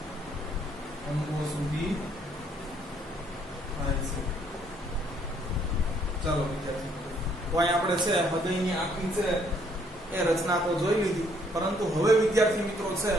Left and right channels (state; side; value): normal; both; correlation 0.66